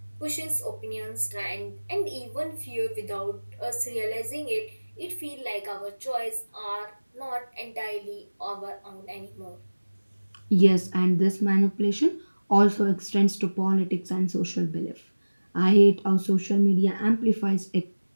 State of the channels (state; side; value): inverted; both; correlation -1.00